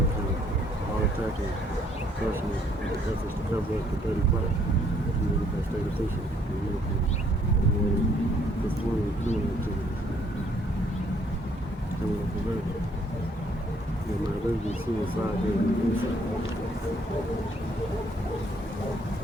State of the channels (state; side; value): normal; both; correlation 0.65